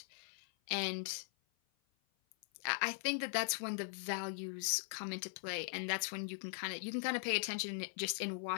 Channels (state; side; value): silent; right; 51 dB below the other